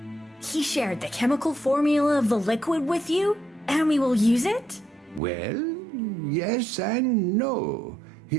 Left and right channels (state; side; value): drops out; left; at 5.2 s